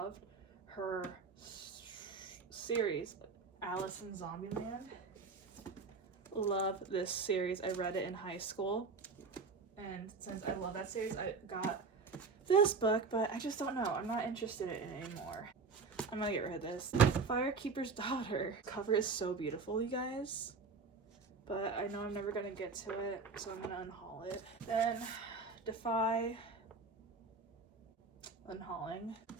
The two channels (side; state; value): left; quieter; 4.5 dB